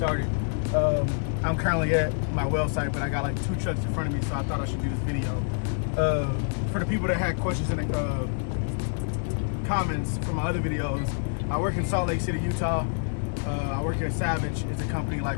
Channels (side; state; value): right; silent; digital silence